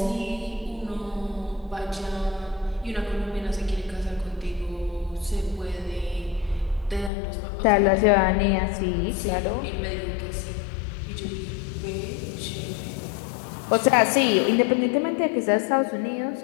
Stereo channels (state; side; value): drops out; right; at 7.1 s